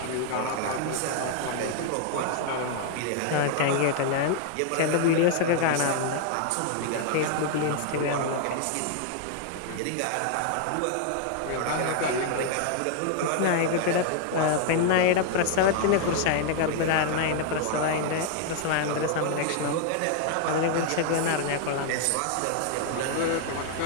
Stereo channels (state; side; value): different; both; correlation 0.00